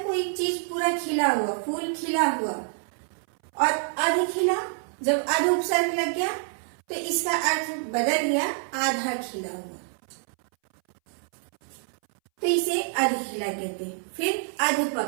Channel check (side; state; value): left; silent; 60 dB below the other